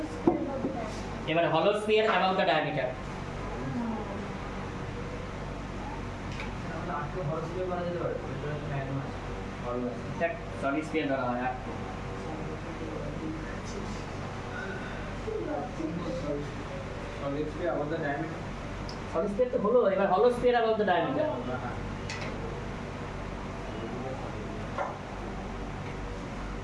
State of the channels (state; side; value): identical; both; correlation 1.00